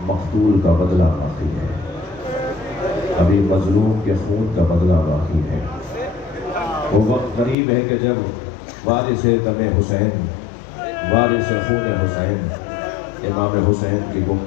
مقتول کا بدلہ باقی ہے، ابھی مظلوم کے خون کا بدلہ باقی ہے۔ وہ وقت قریب ہے کہ جب وارث دم حسین، وارث خون حسین امام حسین کی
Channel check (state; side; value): drops out; right; at 7.6 s